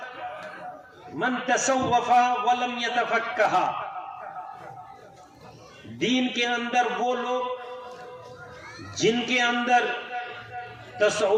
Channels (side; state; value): both; identical; correlation 1.00